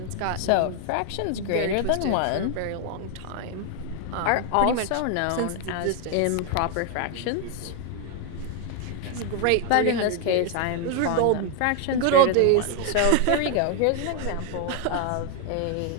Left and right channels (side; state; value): both; different; correlation 0.00